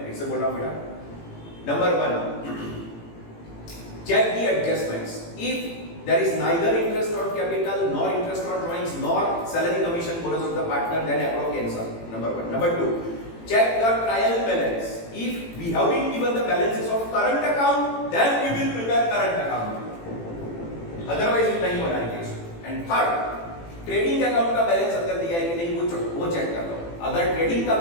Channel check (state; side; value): late; right; 18 ms